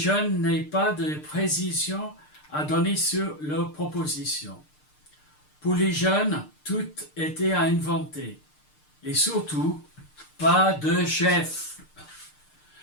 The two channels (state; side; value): late; right; 6.6 ms